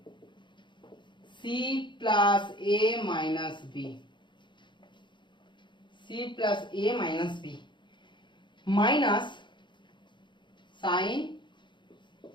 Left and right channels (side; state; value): right; late; 0.23 ms